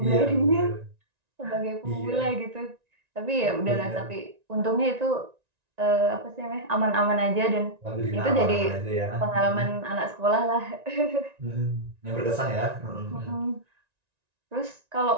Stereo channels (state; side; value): late; left; 1.9 ms